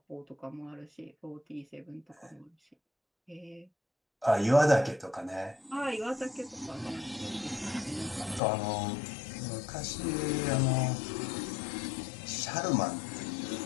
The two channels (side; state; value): right; drops out; at 8.4 s